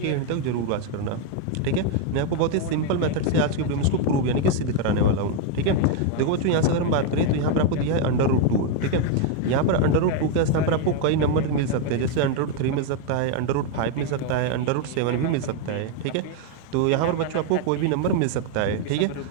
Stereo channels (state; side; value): different; both; correlation 0.01